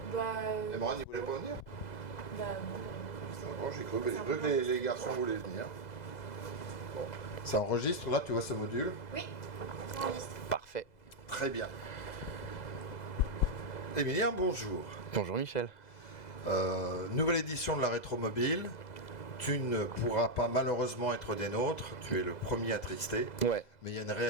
Et Morane, il voulait pas venir? Non. Bon, j'ai cru que les garçons voulaient venir. Bon. Ça enregistre, là, tu vois ce module? Oui, ça enregistre. Parfait. Très bien. Émilien, bonjour. Bonjour Michel. Nouvelle édition de la Rétromobile. Tu ne pourras pas malheureusement être des nôtres, tu es le premier attristé. Ouais. Mais il y a une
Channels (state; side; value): late; right; 2.0 ms